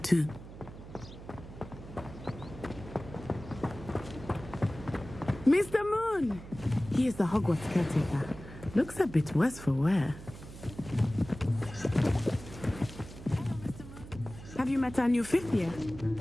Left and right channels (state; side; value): noise; right; hum, 14 dB below the sound